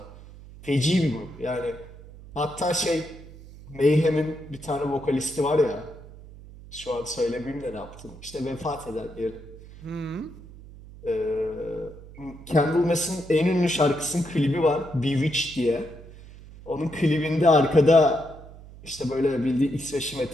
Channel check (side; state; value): right; noise; hum, 18 dB below the sound